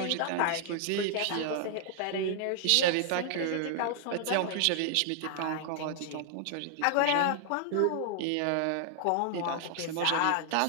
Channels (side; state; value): both; different; correlation -0.01